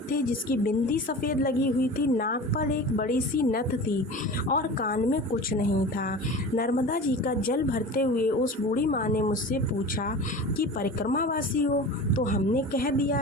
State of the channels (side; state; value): both; normal; correlation 0.35